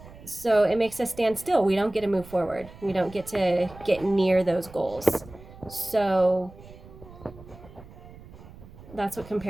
So it makes us stand still. We don't get to move forward. We don't get to get near those goals. So that's what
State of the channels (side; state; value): right; noise; rumble, 19 dB below the sound